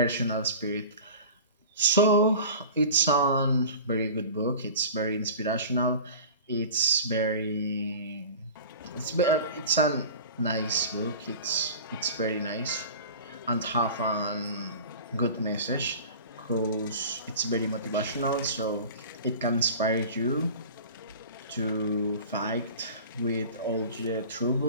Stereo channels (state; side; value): inverted; both; correlation -0.38